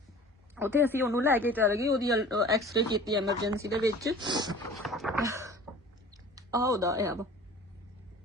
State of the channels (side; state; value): both; normal; correlation 0.43